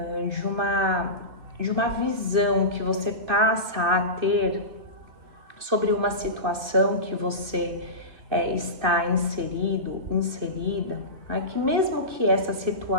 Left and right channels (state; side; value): late; left; 2.6 ms